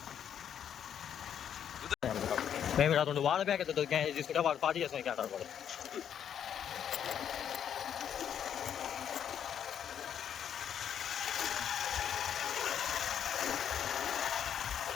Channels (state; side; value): quieter; right; 9.0 dB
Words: మేము ఇక్కడ 2 వాటర్ ప్యాకెట్ తీసుకుంటే వాడు పార్టీ చేస్తాం. ఇక్కడ అంటారు